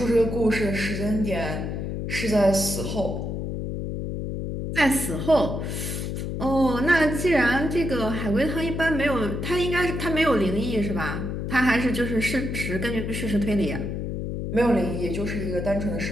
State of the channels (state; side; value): noise; left; hum, 4 dB below the sound